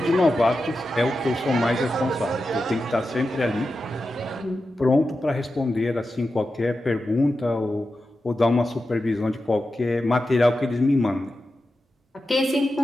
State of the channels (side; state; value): both; normal; correlation 0.91